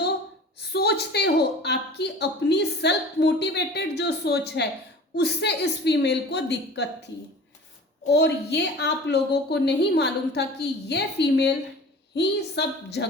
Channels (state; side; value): normal; both; correlation 0.42